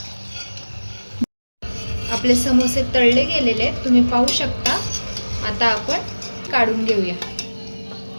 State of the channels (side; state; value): both; inverted; correlation -1.00